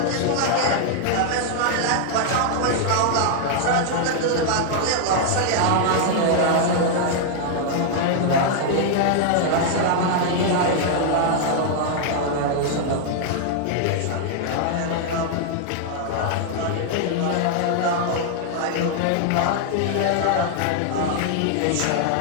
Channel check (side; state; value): both; different; correlation -0.01